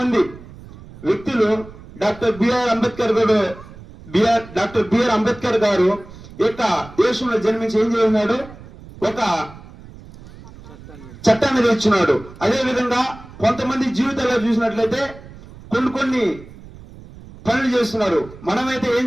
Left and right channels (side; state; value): right; noise; rumble, 18 dB below the sound